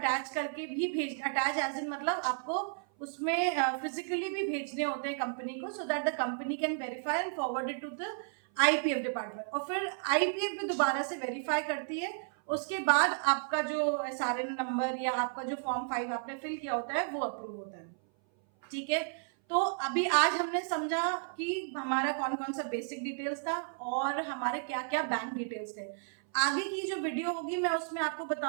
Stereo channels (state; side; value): silent; left; 56 dB below the other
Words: करके भी अटैच एज इन मतलब आपको उसमें फिजिकली भी भेजने होते हैं कंपनी को, so that the company can verify and forward it to the IPF department. और फिर आईपीएफ भी दोबारा से वेरीफाई करती है। उसके बाद आपका जो एसआरएन नंबर या आपका जो फॉर्म 5 आपने फिल किया होता है वो अप्रूव होता है। ठीक है, तो अभी आज हमने समझा कि हमारा कौन कौन सा बेसिक डिटेल्स था और हमारे क्या क्या बैंक डिटेल्स थे। आगे की जो वीडियो होगी मैं उसमें आपको